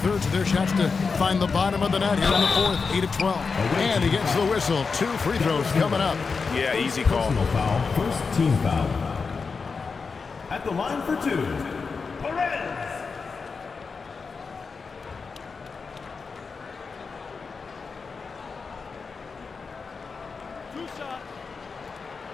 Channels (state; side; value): quieter; right; 4.9 dB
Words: of their shots to find the bottom of the net here in the 4th, 8-12. And he gets the whistle. 2 free throws coming up. Yeah, easy call. Personal foul. First team foul. At the line for 2.